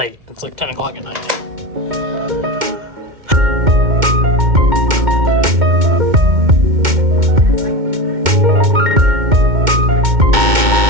It's like 10 o'clock at night now.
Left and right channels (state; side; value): late; left; 2.2 ms